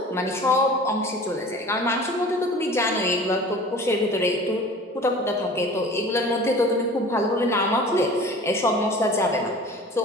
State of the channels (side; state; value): both; normal; correlation 0.42